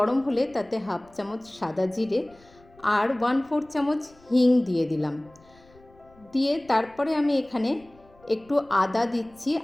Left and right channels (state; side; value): noise; left; rumble, 28 dB below the sound